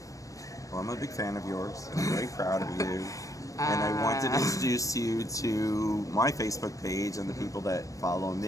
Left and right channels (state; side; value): late; right; 0.16 ms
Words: Well, I'm a big fan of yours. I'm very proud of you. And I wanted to introduce you to my Facebook page and the people that follow